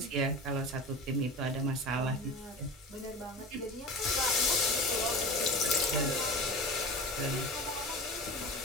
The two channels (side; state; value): both; normal; correlation 0.32